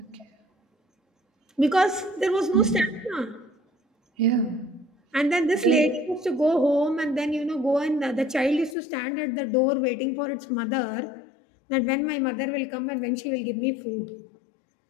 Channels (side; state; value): right; drops out; at 8.8 s